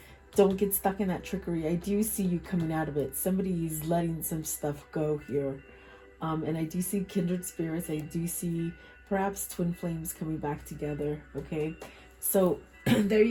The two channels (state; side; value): identical; both; correlation 1.00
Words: Don't get stuck in that trickery. I do see you coming out of it. Somebody is letting some stuff go here. And I do see kindred spirits. I do see perhaps twin flames coming back together. Okay. So there